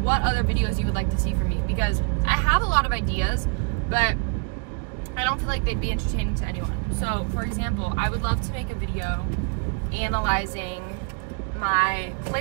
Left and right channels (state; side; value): quieter; left; 36.5 dB